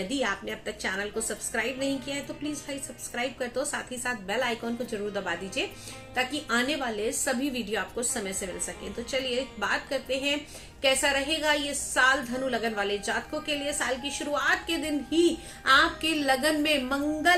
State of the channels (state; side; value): identical; both; correlation 1.00